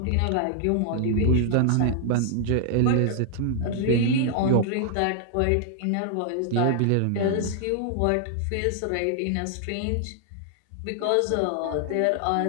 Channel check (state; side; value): different; both; correlation 0.00